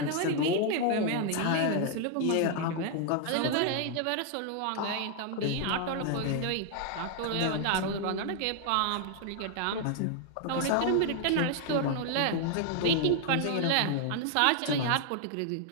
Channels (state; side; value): different; both; correlation 0.00